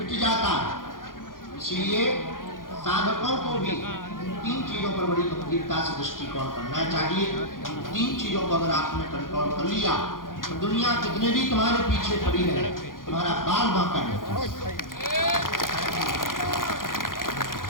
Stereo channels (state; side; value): late; right; 0.90 ms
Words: जाता। इसलिए साधकों को भी 3 चीजों पर बड़ी गंभीरता से दृष्टिकोण करना चाहिए। 3 चीजों को अगर आपने कंट्रोल कर लिया तो दुनिया कितने भी तुम्हारे पीछे पड़ी रहे, तुम्हारा बाल बांका नहीं।